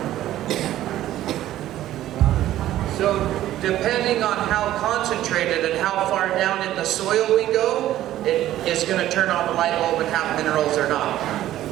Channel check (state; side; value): quieter; left; 13.5 dB